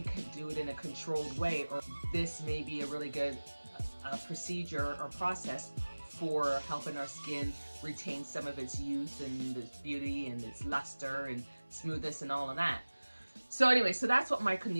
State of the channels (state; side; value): inverted; both; correlation -1.00